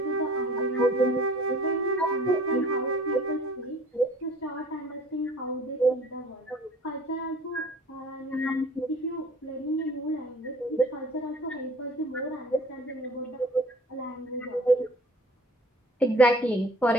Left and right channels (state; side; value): normal; both; correlation 0.49